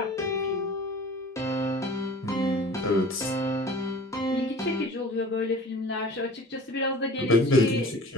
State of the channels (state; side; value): normal; both; correlation 0.44